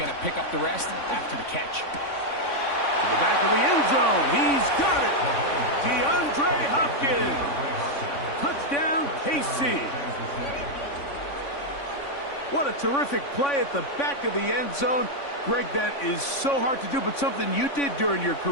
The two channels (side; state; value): right; late; 3.5 ms